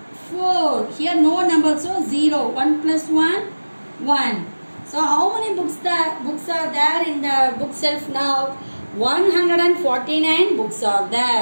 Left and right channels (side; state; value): both; inverted; correlation -1.00